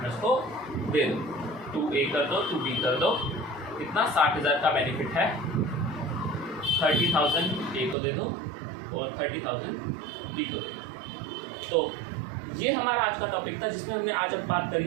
को दे दो। 2A कर दो, 2B कर दो। कितना? 60,000 का बेनिफिट है। 30,000 A को दे दो और 30,000 B को दे दो। तो ये हमारा आज का टॉपिक था जिसमें हमने आज अब बात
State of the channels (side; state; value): left; drops out; at 8.0 s